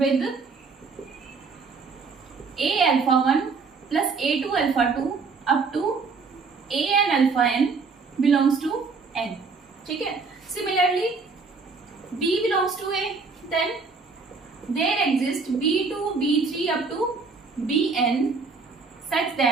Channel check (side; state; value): left; quieter; 4.6 dB